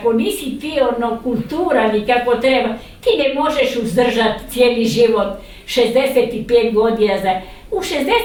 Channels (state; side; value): identical; both; correlation 1.00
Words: nisi ti kulturan i kako treba, ti ne možeš uzdržati cijeli život 65 godina. U